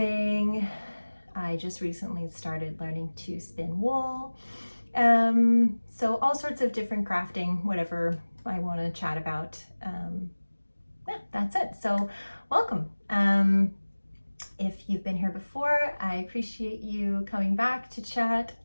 I just recently started learning to spin wool. So all sorts of different crafting, whatever I want to chat about. Yeah, that's it. So welcome. If you've been here before, I appreciate you coming back to chat.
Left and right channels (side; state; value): both; inverted; correlation -1.00